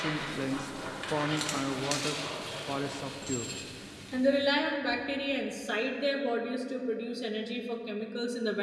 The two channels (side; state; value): both; identical; correlation 1.00